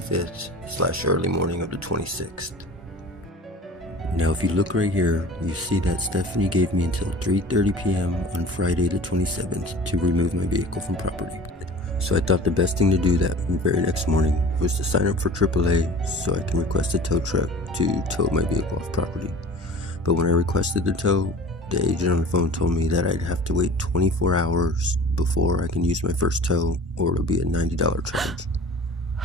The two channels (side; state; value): both; normal; correlation 0.42